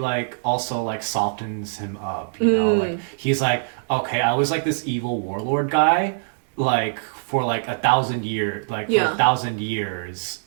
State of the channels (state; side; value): silent; left; digital silence